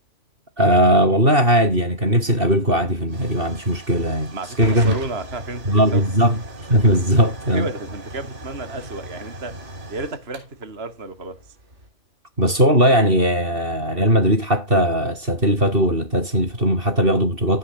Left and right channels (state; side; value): late; left; 2.7 ms